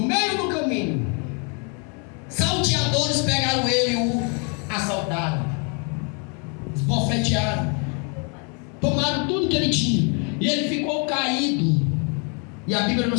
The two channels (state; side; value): quieter; right; 36.7 dB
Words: meio do caminho, salteadores pegaram ele e o assaltaram, esbofetearam, tomaram tudo que ele tinha, e ele ficou caído, e a Bíblia